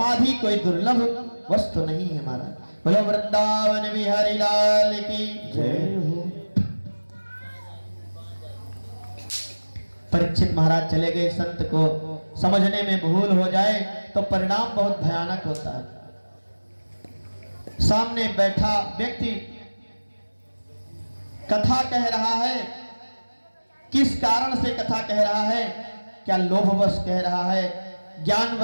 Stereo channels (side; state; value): both; inverted; correlation -1.00